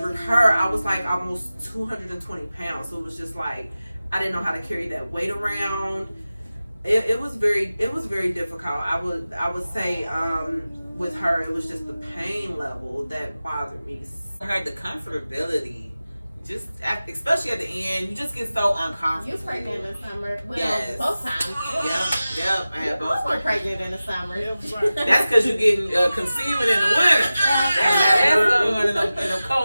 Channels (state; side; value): inverted; both; correlation -0.96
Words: her, I was like almost 220 pounds. So it was just like I didn't know how to carry that weight around. It was very difficult. I would say with her, it was just the pain level that bothered me. I heard the comfortability. Just especially at the end, you just get so uncomfortable. You pregnant in the summer? Well, yes. Both times. Yep. I had both. Both were pregnant in the summer. That's because you're getting conceiving in the winter. That's going in the